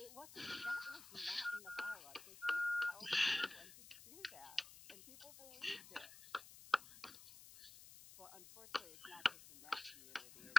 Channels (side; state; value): left; noise; hiss, 15 dB below the sound